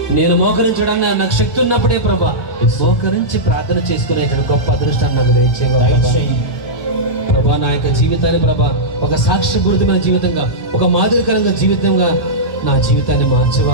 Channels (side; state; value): right; late; 1.1 ms